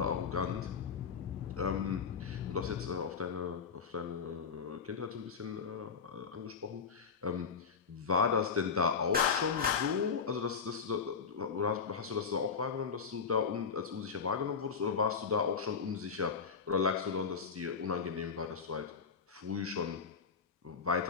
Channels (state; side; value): quieter; right; 5.8 dB